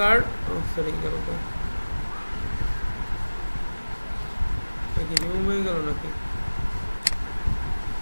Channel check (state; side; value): inverted; both; correlation -1.00